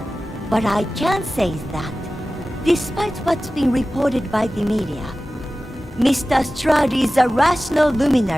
What I can say is that, despite what's been reported by the media, Mr. Stroud is a rational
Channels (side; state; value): both; normal; correlation 0.96